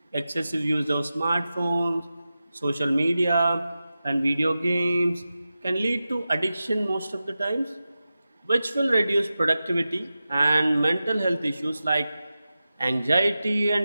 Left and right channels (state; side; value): inverted; both; correlation -0.93